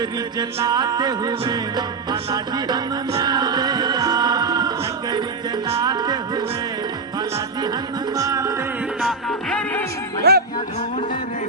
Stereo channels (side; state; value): left; quieter; 4.1 dB